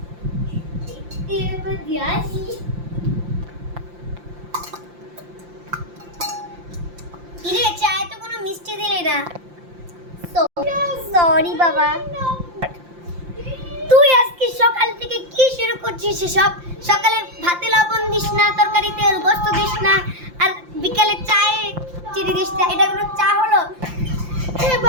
এবার দিয়াছি। কি রে, চায়ে তো কোনো মিষ্টি দিলি না। সরি বাবা। তুই আজকে সকাল থেকে কি শুরু করছিস সব? সকালে ভাতে লবণ দিস না, তরকারিতে গোস্ত দিস না, আর বিকালে চায়ে চিনি দিস না। এটা কোনো চা হলো?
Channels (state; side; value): late; left; 5.8 ms